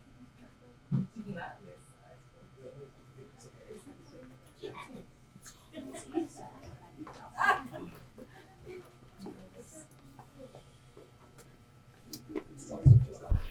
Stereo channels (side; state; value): both; identical; correlation 1.00